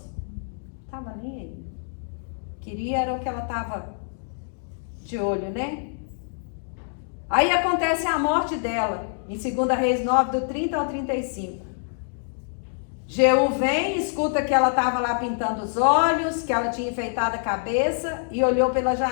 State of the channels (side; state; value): right; silent; digital silence